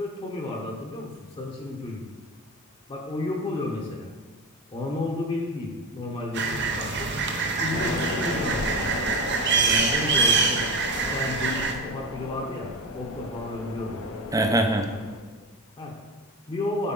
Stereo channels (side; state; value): both; normal; correlation 0.22